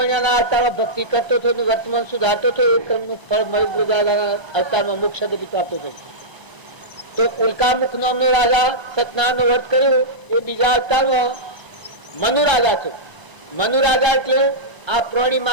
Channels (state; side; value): late; left; 1.0 ms